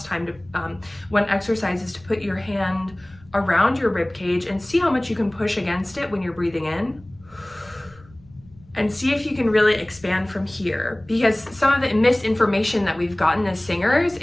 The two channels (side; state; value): left; noise; rumble, 25 dB below the sound